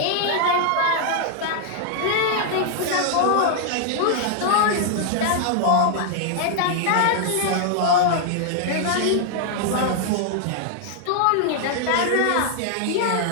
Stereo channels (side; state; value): both; different; correlation -0.01